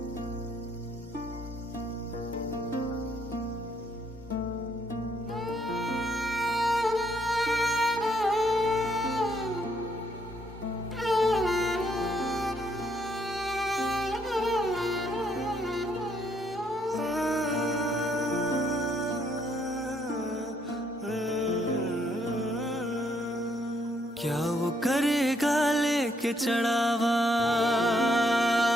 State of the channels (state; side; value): normal; both; correlation 0.72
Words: वो करेगा लेके चढ़ावा,